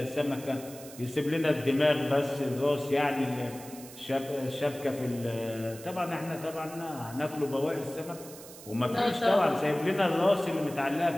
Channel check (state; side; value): noise; right; hiss, 17 dB below the sound